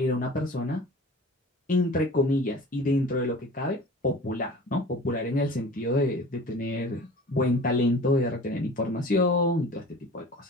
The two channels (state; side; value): normal; both; correlation 0.41